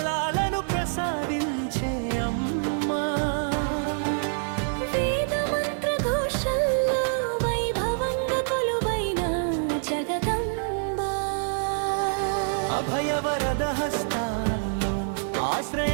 ప్రసాదించే అమ్మా, వేద మంత్ర ఘోషల్లో వైభవంగా కొలువైన జగదంబ, అభయవరద హస్తాల్లో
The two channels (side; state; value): left; silent; digital silence